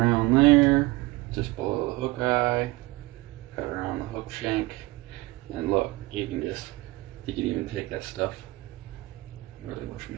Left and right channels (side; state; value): left; quieter; 21.3 dB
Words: there, just below the hook eye. Cut around the hook shank, and look, you can even take that stuff. I really wish